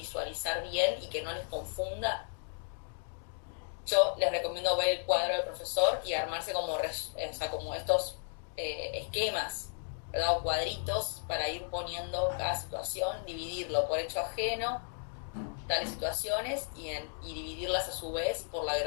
bien y que no les confunda, yo les recomiendo ver el cuadro del profesor y armarse como estos esquemas, ¿verdad? O cuadritos para ir poniendo cada situación, dividirlo por hecho ajeno, tales situaciones, y dividirlas a su vez por la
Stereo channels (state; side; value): silent; right; digital silence